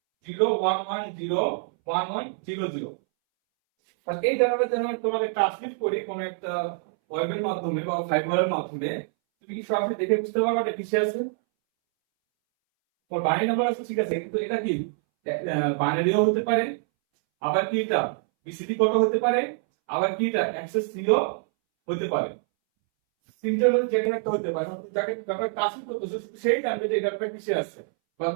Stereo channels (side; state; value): left; silent; 61 dB below the other